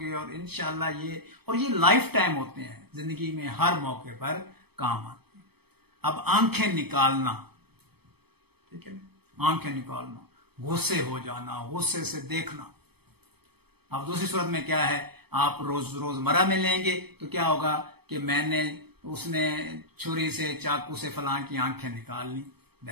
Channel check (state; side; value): late; left; 0.97 ms